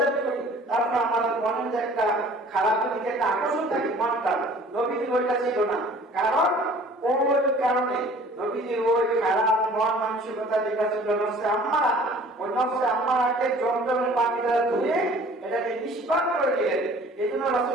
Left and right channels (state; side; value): normal; both; correlation 0.50